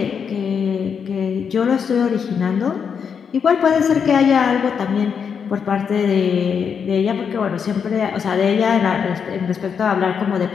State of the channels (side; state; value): right; quieter; 6.8 dB